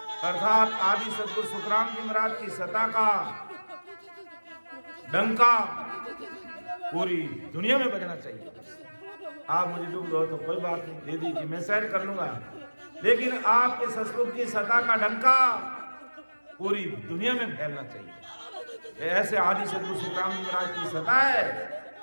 अर्थात आदि सदगुरु सुखराम जी महाराज की सत्ता का डंका पूरी दुनिया में बजना चाहिए। आप मुझे दुख दो तो कोई बात नहीं, दे दीजिए, मैं सहन कर लूंगा, लेकिन आपके सतगुरु की सत्ता का डंका पूरी दुनिया में फैलना चाहिए। ऐसे आदि सदगुरु सुखराम जी महाराज की सत्ता है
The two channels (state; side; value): inverted; both; correlation -1.00